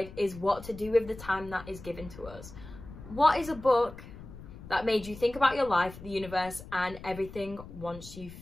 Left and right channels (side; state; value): left; noise; rumble, 15 dB below the sound